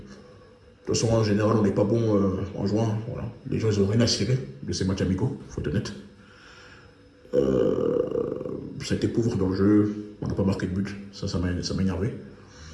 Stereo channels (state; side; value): identical; both; correlation 1.00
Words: toute façon, en général, on n'est pas bon en juin. Voilà. Les gens, ils n'ont rien à cirer de ces matchs amicaux, il faut être honnête. Ça a été pauvre dans le jeu, on n'a pas marqué de but, ça m'a énervé.